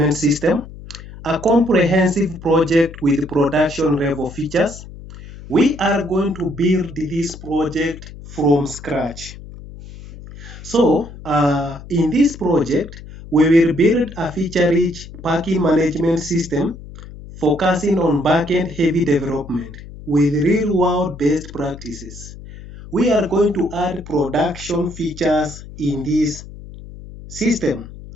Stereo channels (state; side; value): noise; left; hum, 15 dB below the sound